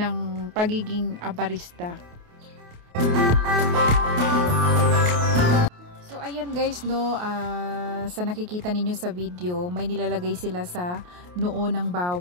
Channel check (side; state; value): left; late; 28 ms